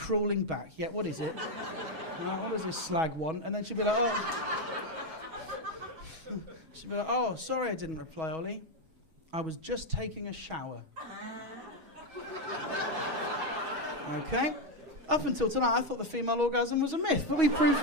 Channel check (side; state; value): left; late; 6.2 ms